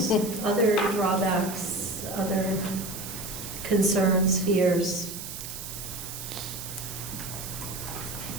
other drawbacks, other concerns, fears?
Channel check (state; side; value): noise; right; hiss, 9 dB below the sound